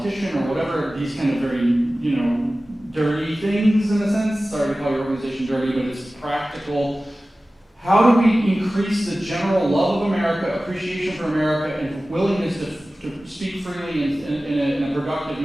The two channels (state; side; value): normal; both; correlation 0.96